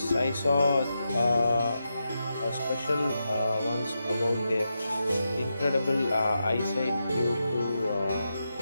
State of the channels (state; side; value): inverted; both; correlation -0.87